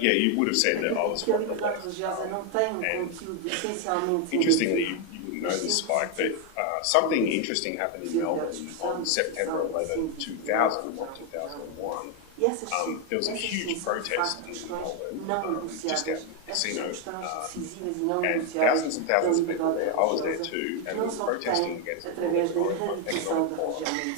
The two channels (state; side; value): different; both; correlation 0.01